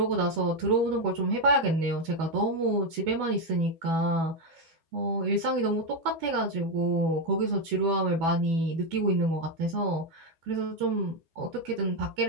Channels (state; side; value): late; left; 12 ms